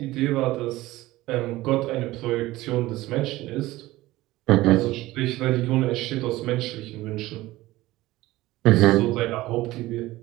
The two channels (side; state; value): left; quieter; 17.8 dB